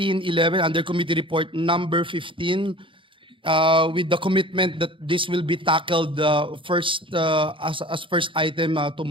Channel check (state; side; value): late; left; 0.25 ms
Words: under Committee Report number 15 with the commitment that this will be tackled first as first item